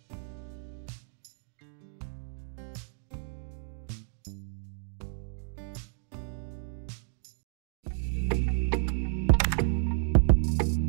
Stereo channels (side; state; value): left; silent; digital silence